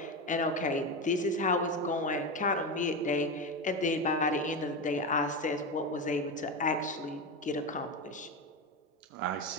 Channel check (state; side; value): normal; both; correlation 0.17